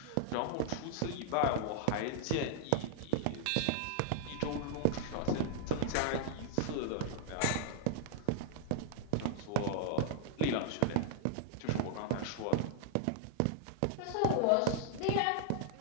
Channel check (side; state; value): both; different; correlation 0.00